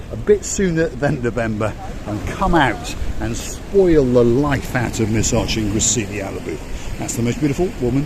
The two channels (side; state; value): both; identical; correlation 1.00